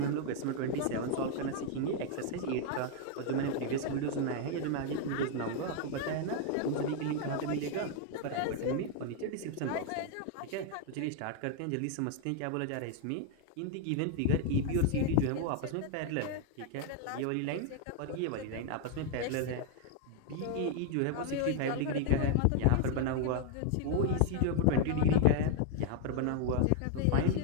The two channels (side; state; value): both; different; correlation 0.00